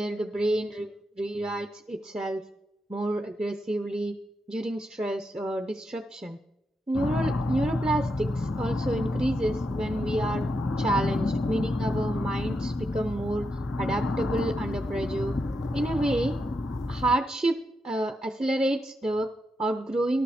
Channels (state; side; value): normal; both; correlation 0.84